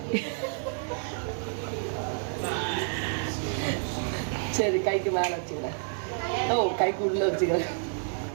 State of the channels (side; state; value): left; silent; 57 dB below the other